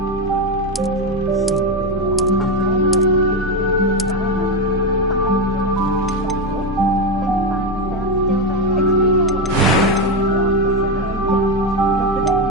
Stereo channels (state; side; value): normal; both; correlation 0.10